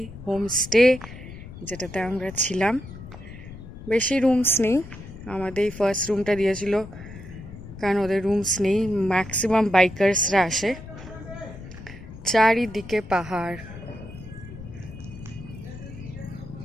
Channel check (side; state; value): left; noise; rumble, 14 dB below the sound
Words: হোমস্টে, যেটাতে আমরা ছিলাম। বেশি রুমস নেই, আমাদের ফার্স্ট রুমটা দিয়েছিল কারণ ওদের রুমস নেই, ম্যাক্সিমাম বাইকার্সরা আসে। চারিদিকে পাহাড়